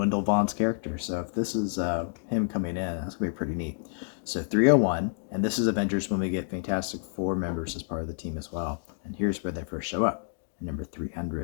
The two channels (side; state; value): right; silent; digital silence